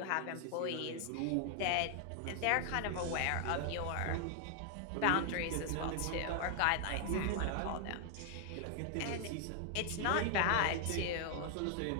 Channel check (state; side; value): different; both; correlation 0.00